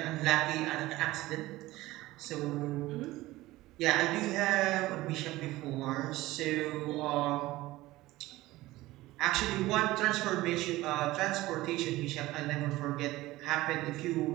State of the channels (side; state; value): left; quieter; 17.9 dB